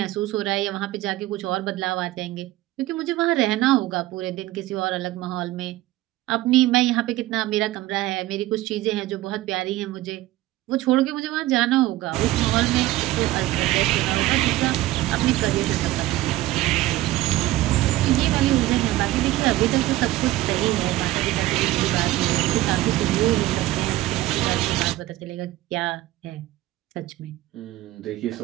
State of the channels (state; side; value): quieter; left; 16.6 dB